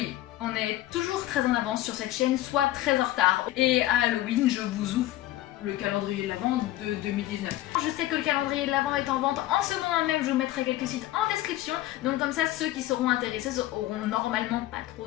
on est toujours très en avance sur cette chaîne, soit très en retard. Et à Halloween, je vous ouvre le calendrier de l'Avent de 2019. Je sais que le calendrier de l'Avent est en vente en ce moment même, je vous mettrai quelques sites en description, donc comme ça ceux qui seront intéressés auront normalement pas trop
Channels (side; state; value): right; quieter; 15.2 dB